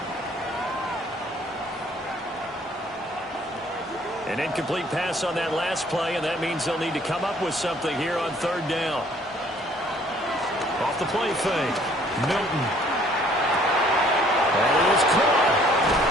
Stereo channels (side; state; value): both; normal; correlation 0.59